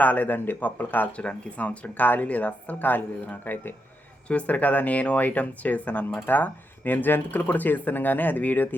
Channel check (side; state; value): both; normal; correlation 0.83